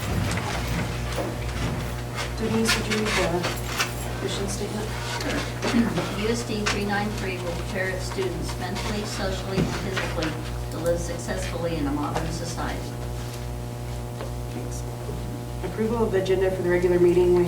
Denise, would you read the mission statement? USD 393 will prepare its students mentally, socially, and physically to live successfully in a modern society. Thanks. Approval of the agenda for the regular meeting. We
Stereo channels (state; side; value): identical; both; correlation 1.00